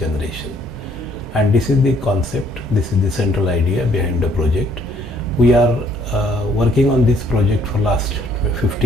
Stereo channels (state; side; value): normal; both; correlation 0.64